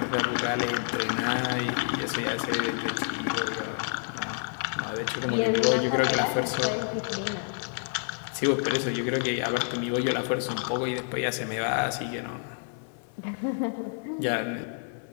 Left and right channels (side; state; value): right; silent; 59 dB below the other